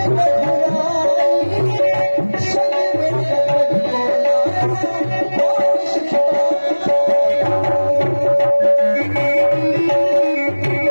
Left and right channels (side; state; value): both; inverted; correlation -1.00